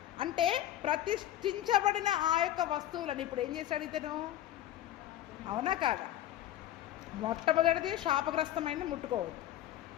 అంటే ప్రతిష్ఠించబడిన ఆ యొక్క వస్తువులను ఇప్పుడు ఏం చేశాడు ఇతను? అవునా కాదా? మొట్టమొదటిది శాపగ్రస్తమైనది ముట్టుకోవద్దు.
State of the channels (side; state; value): right; quieter; 12.8 dB